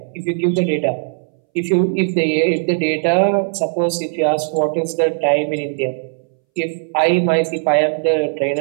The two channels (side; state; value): left; silent; 65 dB below the other